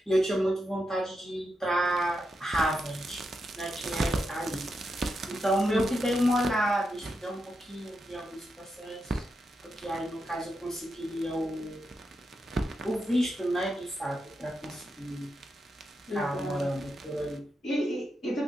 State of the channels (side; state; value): both; normal; correlation 0.86